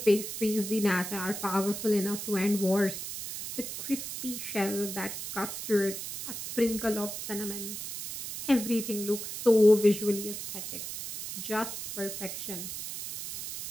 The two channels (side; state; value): right; noise; hiss, 7 dB below the sound